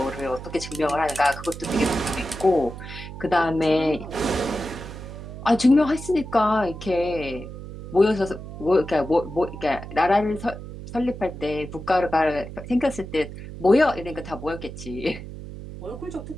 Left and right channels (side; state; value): right; noise; hum, 11 dB below the sound